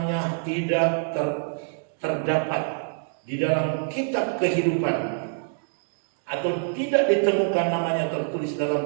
tidak terdapat di dalam kitab kehidupan, atau tidak ditemukan namanya tertulis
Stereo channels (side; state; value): left; silent; digital silence